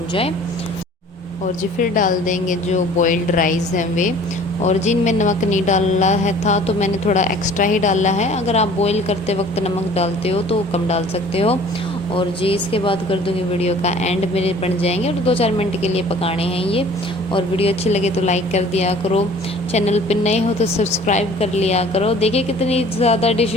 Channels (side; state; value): both; normal; correlation 0.50